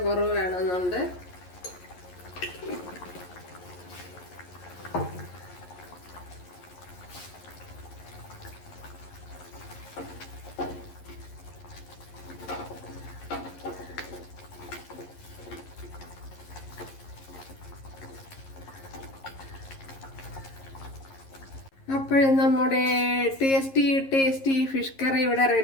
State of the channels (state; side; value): late; right; 11 ms